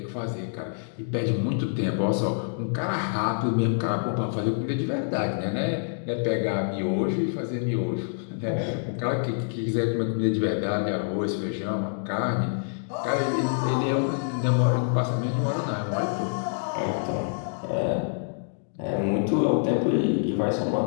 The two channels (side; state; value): right; silent; digital silence